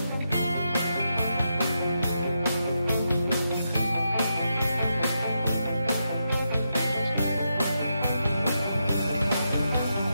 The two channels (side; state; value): both; inverted; correlation -0.84